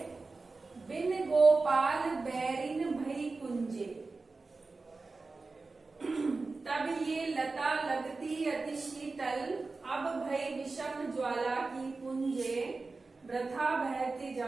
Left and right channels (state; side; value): quieter; left; 3.8 dB